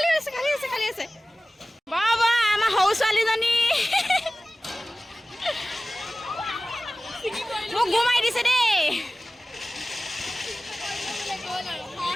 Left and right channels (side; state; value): both; normal; correlation 0.97